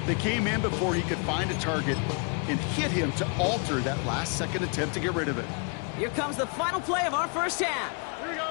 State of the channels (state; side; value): quieter; right; 37.5 dB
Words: They came in before he could find a target and hit him to alter that last-second attempt to get rid of it. Here comes the final play of our first half. Here we go.